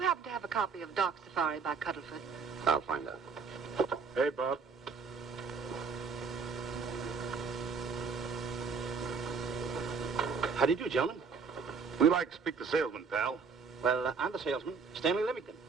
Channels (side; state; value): left; quieter; 5.2 dB